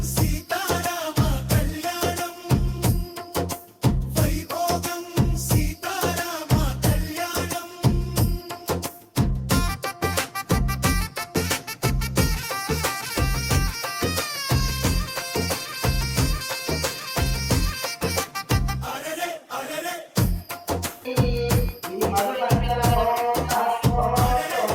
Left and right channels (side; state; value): both; identical; correlation 1.00